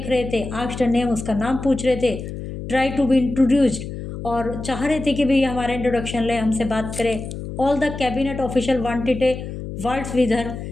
रहे थे, आस्क्ड नेम, उसका नाम पूछ रहे थे, ट्राई टू बी इंट्रोड्यूस्ड, और चाह रहे थे कि भाई हमारा इंट्रोडक्शन ले, हमसे बात करे। All the cabinet official wanted A words with her,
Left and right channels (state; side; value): noise; left; hum, 8 dB below the sound